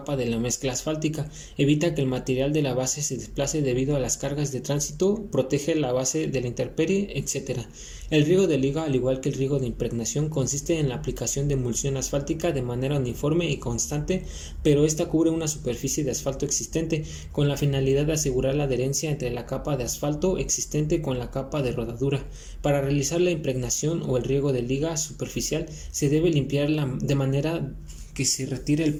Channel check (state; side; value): identical; both; correlation 1.00